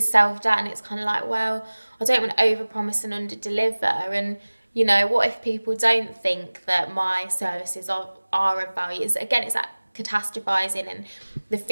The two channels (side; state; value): both; inverted; correlation -1.00